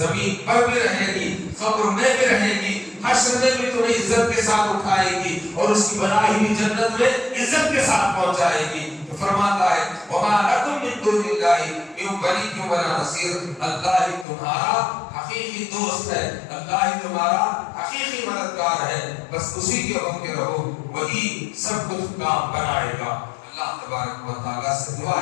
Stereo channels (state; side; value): drops out; right; at 14.2 s